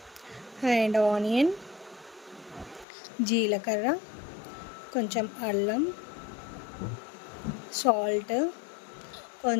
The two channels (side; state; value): right; drops out; at 2.9 s